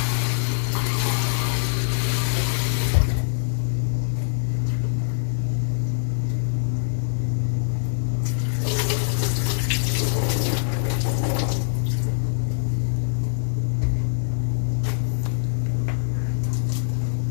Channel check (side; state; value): right; silent; 63 dB below the other